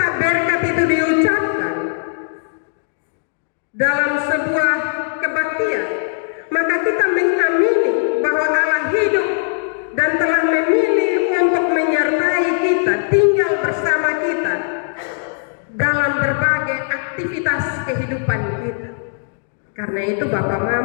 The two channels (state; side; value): silent; right; digital silence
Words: berkat itu diucapkan dalam sebuah kebaktian, maka kita mengamini bahwa Allah hidup dan telah memilih untuk menyertai kita, tinggal bersama kita dalam berbagai aktivitas aktivitas kehidupan kita. Karena itu Bapak